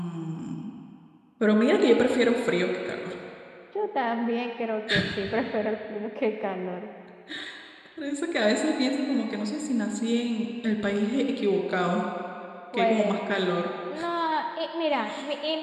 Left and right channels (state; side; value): identical; both; correlation 1.00